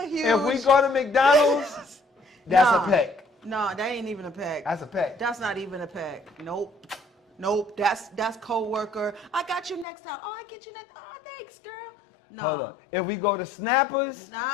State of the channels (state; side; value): drops out; right; at 9.9 s